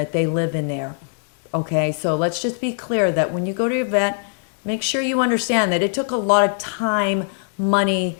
they live in there, okay? So let's just be clear that when you go to your vet, make sure you understand that it took a lot of time, money,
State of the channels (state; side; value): silent; right; digital silence